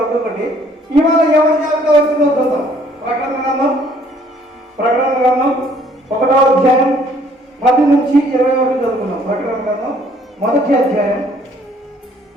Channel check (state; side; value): normal; both; correlation 0.61